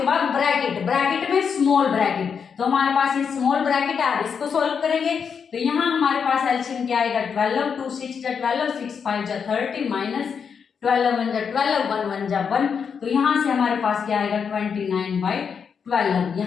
बाद ब्रैकेट, ब्रैकेट में स्मॉल ब्रैकेट। तो हमारे पास ये स्मॉल ब्रैकेट है, इसको सोल्व करेंगे। तो यहाँ हमारे पास एलसीएम क्या आएगा, 12, 2 6 जा 12, 6 5 जा 30, -12 1 जा 12, 1 1 जा 1। तो यहाँ से हमारे पास क्या आएगा, 29/12।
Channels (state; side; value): quieter; right; 6.5 dB